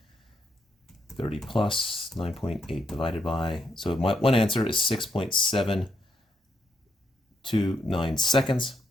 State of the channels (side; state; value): both; normal; correlation 0.78